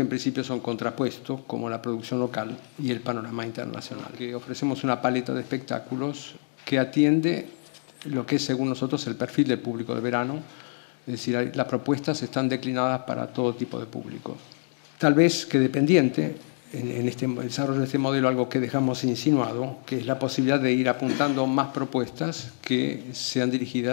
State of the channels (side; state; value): right; silent; digital silence